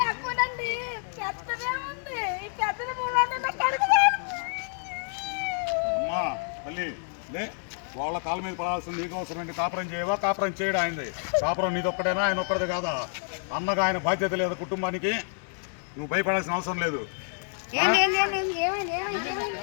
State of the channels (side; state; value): right; silent; 55 dB below the other